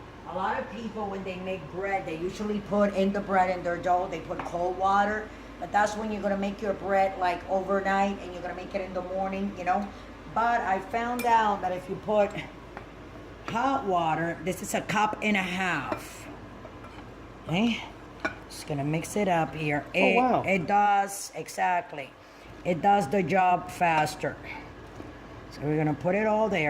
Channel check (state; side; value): identical; both; correlation 1.00